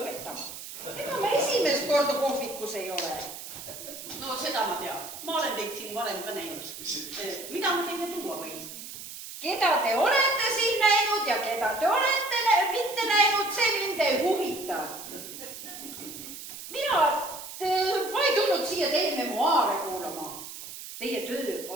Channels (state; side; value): noise; right; hiss, 11 dB below the sound